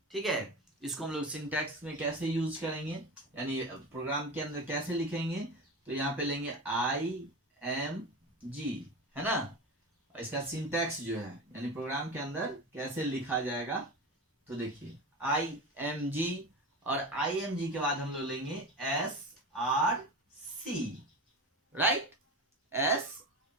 ठीक है? इसको हम लोग सिंटैक्स में कैसे यूज करेंगे, यानी प्रोग्राम के अंदर कैसे लिखेंगे? तो यहाँ पे लेंगे IMG, है ना? इसका सिंटैक्स जो है यानी प्रोग्राम के अंदर कैसे लिखा जाएगा, तो देखिए IMG, और IMG के बाद हम लोग लेंगे SRC, राइट?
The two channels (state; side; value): normal; both; correlation 0.26